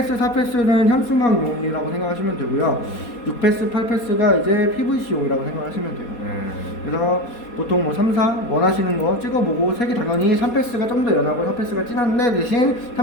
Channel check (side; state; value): right; late; 4.2 ms